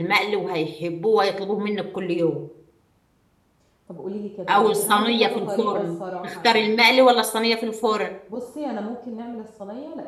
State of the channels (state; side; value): identical; both; correlation 1.00